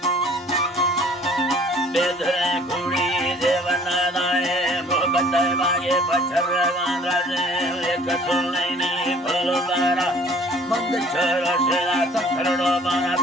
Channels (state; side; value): normal; both; correlation 0.53